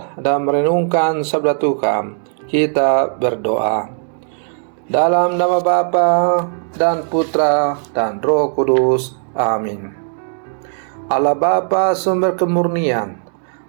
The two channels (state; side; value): silent; left; 59 dB below the other